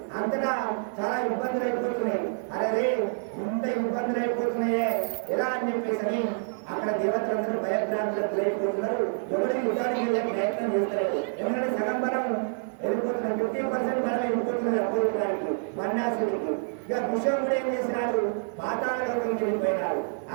అంతటా చాలా ఇబ్బందులు అయిపోతున్నాయి. అరే ఇంత ఇబ్బందులు అయిపోతున్నాయే ఎలా అని చెప్పేసి అక్కడ దేవతలందరూ భయభ్రాంతులకు అయిపోతున్నారు. ఎవరికి యుద్ధానికి వెళ్ళే ప్రయత్నం చేస్తారు. ఎందుకంటే సగం బలం వెళ్ళిపోతున్నారు, 50% బలం వెళ్ళిపోతున్నారు అపోజిటానికి బండాసుడికి. ఇక విషయంలో ఏం చేసినాడు? పాతాళ లోకంకి వెళ్ళిపోయినాడు.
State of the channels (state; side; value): silent; left; digital silence